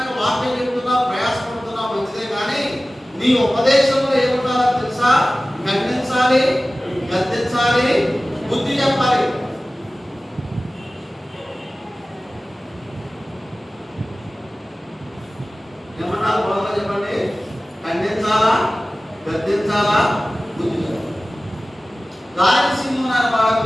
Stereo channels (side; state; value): both; normal; correlation 0.97